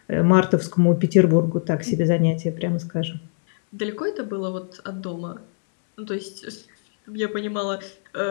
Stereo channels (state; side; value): silent; right; 64 dB below the other